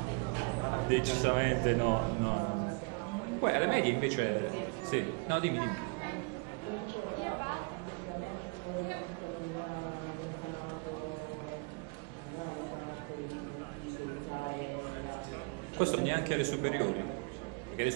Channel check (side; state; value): left; quieter; 33.9 dB